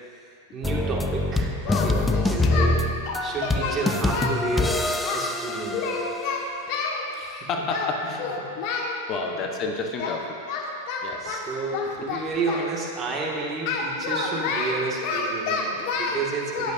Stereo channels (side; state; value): both; normal; correlation 0.40